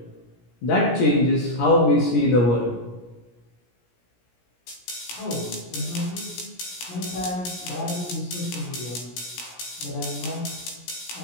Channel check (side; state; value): right; late; 17 ms